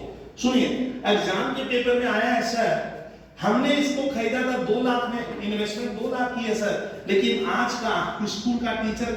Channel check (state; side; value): identical; both; correlation 1.00